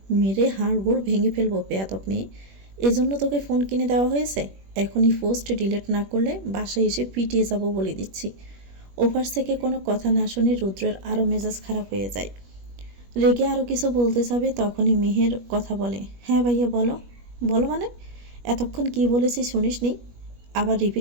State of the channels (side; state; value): left; late; 21 ms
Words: মেরে হাড় গোড় ভেঙে ফেলবো বেয়াদব মেয়ে। এজন্য তোকে ফোন কিনে দেওয়া হয়েছে? এখনই পোস্ট ডিলিট না করলে বাসায় এসে পিটিয়ে যাব বলে দিচ্ছি। ওপাশ থেকে কোনো কথা না শুনে রুদ্রের আরও মেজাজ খারাপ হয়ে যায়। রেগে আরও কিছু বলতে যাবে, তখনই মেহের কথা বলে, হ্যাঁ ভাইয়া বলো। বলো মানে? এতক্ষণ কি বলেছি শুনিসনি? আবার